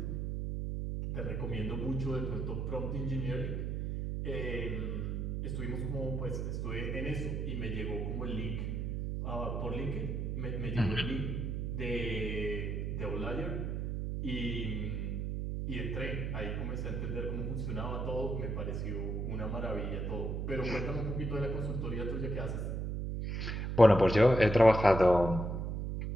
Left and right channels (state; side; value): noise; right; hum, 2 dB below the sound